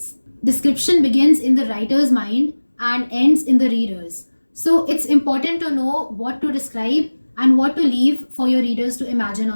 Description begins in the writer's mind and ends in the reader's. So it's important to know what to describe and what to leave for your readers to imagine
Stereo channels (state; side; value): inverted; both; correlation -1.00